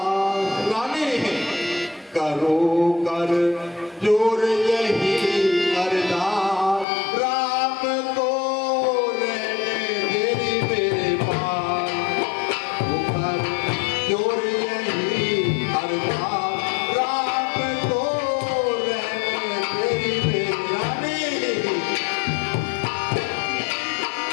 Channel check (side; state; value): right; drops out; at 6.9 s